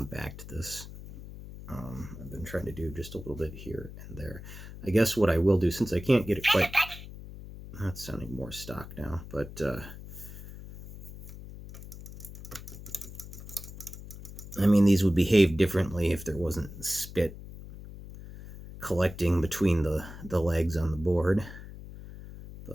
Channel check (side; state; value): left; noise; hum, 13 dB below the sound